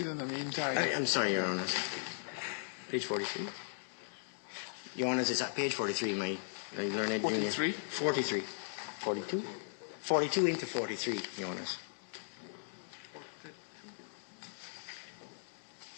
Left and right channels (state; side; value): silent; right; digital silence